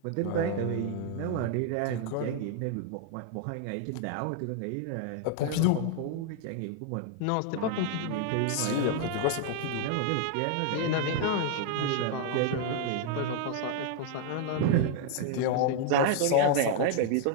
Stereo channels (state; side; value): different; both; correlation 0.00